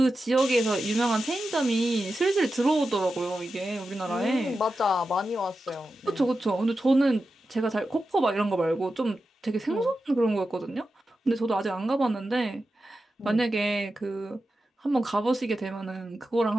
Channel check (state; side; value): normal; both; correlation 0.91